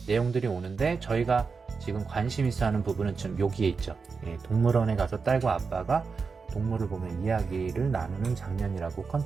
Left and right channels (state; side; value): quieter; left; 5.0 dB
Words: 내용들이 오는데, 저희가 지금 관심 있어 하는 부분은 지금 여기에 있죠. 동물원에 가서 딸과 아빠가 동물을 보며 이야기를 나누는 장면이라고